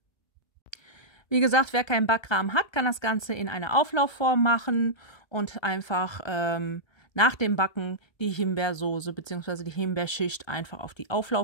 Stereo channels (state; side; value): late; right; 1.3 ms